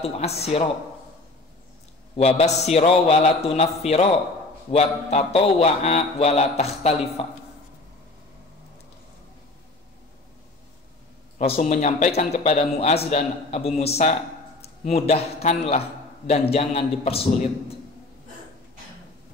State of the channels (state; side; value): quieter; right; 3.1 dB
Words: wabassiro wala tunaffiro, wattatowa'a wala takhtalifa. Rasul menyampaikan kepada Mu'az dan Abu Musa, mudahkanlah dan jangan dipersulit.